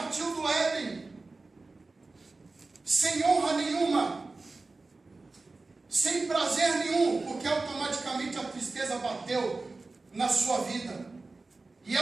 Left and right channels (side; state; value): left; quieter; 3.5 dB